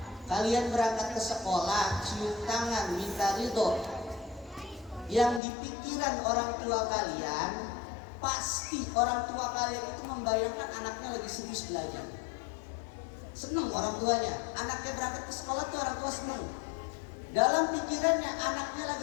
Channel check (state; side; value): drops out; right; at 5.4 s